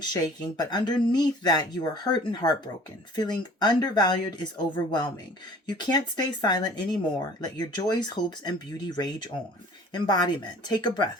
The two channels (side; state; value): both; normal; correlation 0.49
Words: shaking, but underneath that you are hurt and heartbroken. Feeling undervalued is overwhelming. You can't stay silent anymore. Let your joys, hopes, and beauty rage on. Embodiment. Take a